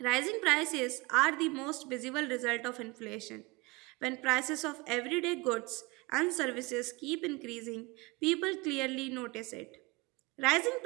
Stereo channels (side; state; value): left; quieter; 24.3 dB